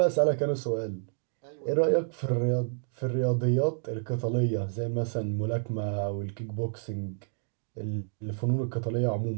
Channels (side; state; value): left; silent; digital silence